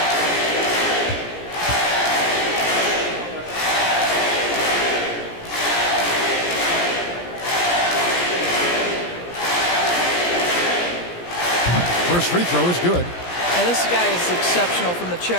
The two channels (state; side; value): late; right; 17 ms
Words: First free throw is good. And this guy is exceptional from the